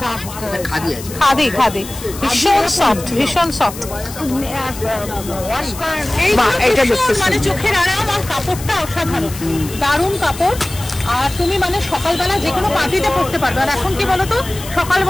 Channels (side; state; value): left; noise; hiss, 13 dB below the sound